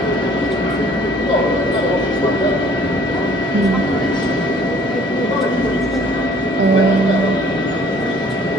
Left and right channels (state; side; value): normal; both; correlation 0.56